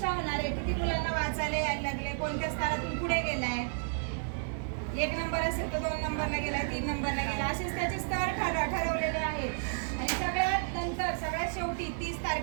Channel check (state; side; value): silent; left; digital silence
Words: होणार आहे. किती मुलांना वाचायला यायला लागले, कोणत्या स्तरातून पुढे गेलाय, 1 नंबर असेल तर 2 नंबरला गेलाय, 3 नंबरला गेला, असेच त्याचे स्तर ठरवलेले आहेत. आणि सगळ्यात नंतर सगळ्यात शेवटी 30